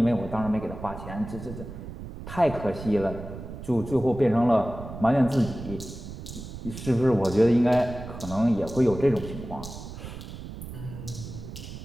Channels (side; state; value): right; noise; rumble, 11 dB below the sound